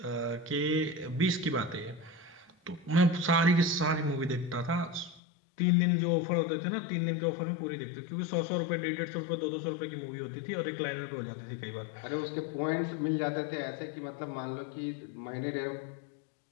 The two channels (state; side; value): drops out; right; at 5.2 s